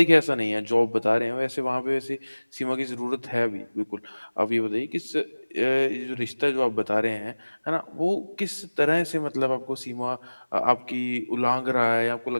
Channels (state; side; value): inverted; both; correlation -1.00